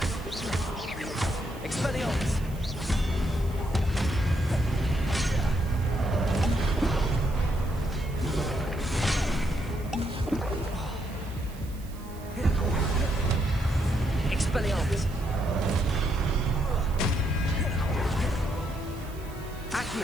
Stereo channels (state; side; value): noise; right; hiss, 21 dB below the sound